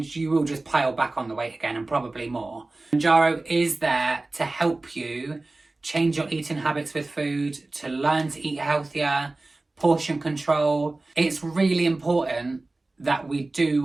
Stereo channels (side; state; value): left; quieter; 3.1 dB